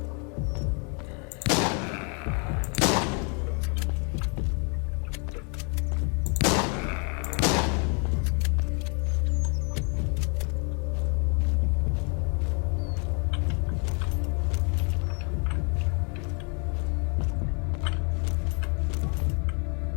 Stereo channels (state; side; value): quieter; right; 36.9 dB